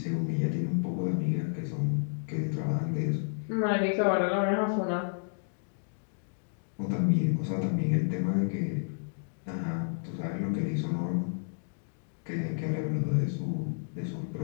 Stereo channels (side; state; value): right; silent; digital silence